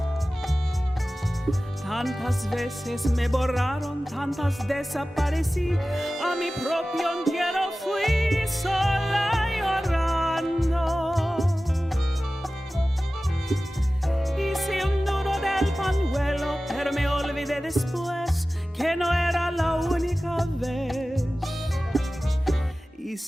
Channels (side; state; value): both; normal; correlation 0.96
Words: Tantas veces me borraron, tantas desaparecí, a mi propio entierro fui sola llorando. Pero me olvidé después que no era la única vez. Y